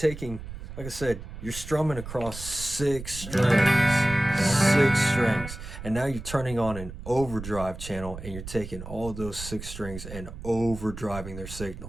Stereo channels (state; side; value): noise; right; rumble, 11 dB below the sound